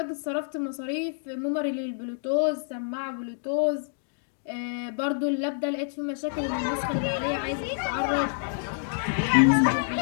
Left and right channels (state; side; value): silent; right; digital silence